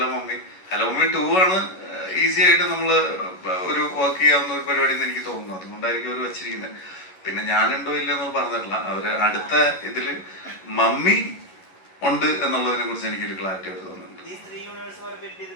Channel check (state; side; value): late; right; 11 ms